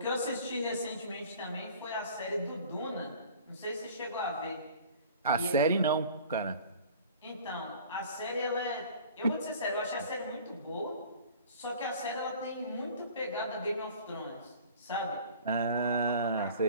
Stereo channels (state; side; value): inverted; both; correlation -0.46